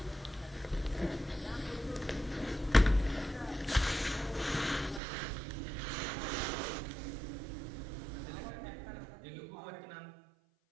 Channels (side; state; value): left; drops out; at 5.0 s